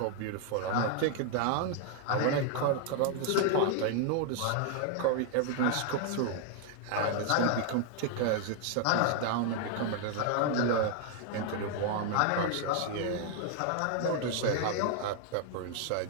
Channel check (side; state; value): both; different; correlation 0.00